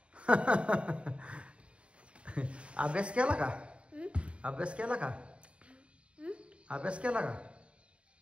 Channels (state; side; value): late; left; 0.059 ms